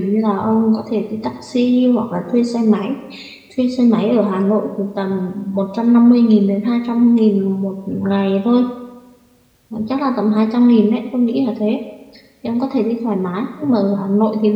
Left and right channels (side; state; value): both; identical; correlation 1.00